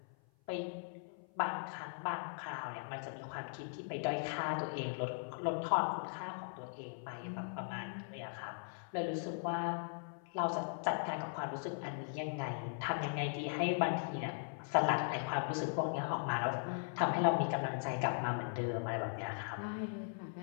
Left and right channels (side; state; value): right; silent; 52 dB below the other